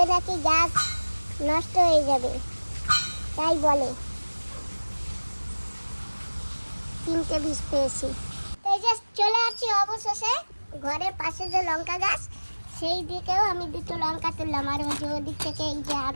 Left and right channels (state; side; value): inverted; both; correlation -1.00